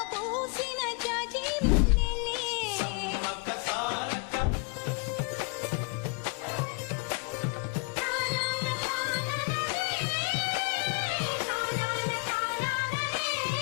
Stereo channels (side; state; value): right; quieter; 34.2 dB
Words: పూసిన జాజి మల్లెలే సమ్మక్క సారక్క